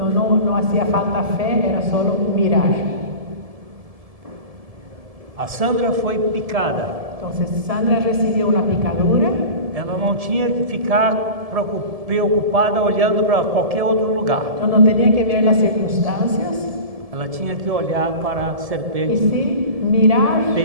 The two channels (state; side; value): late; left; 1.7 ms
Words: hacía falta fe, era solo mirar. A Sandra foi picada. Entonces Sandra recibió una picadura, Ela não tinha que ficar preocupada olhando para qualquer outro lugar. no tenía que ver las circunstancias, Ela tinha que olhar para a y serpente sí mirar